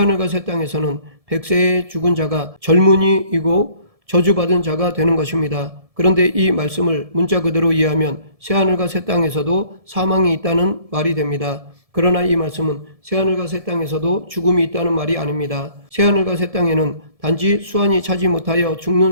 새 땅에서는 백세에 죽은 자가 젊은이이고 저주받은 자가 되는 것입니다. 그런데 이 말씀을 문자 그대로 이해하면 새하늘과 새 땅에서도 사망이 있다는 말이 됩니다. 그러나 이 말씀은 새하늘과 새 땅에서도 죽음이 있다는 말이 아닙니다. 새하늘과 새 땅에는 단지 수완이 차지 못하여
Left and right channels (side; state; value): left; late; 1.7 ms